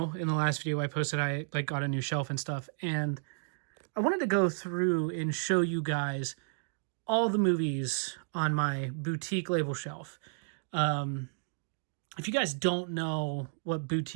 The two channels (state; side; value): silent; left; digital silence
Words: in the last video I posted, I got a new shelf and stuff. And I wanted to go through and show you guys all the movies on my boutique label shelf. If you guys don't know what